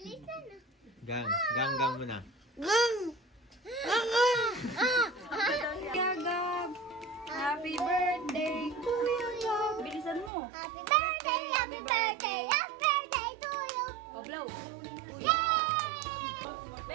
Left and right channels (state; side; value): drops out; left; at 10.3 s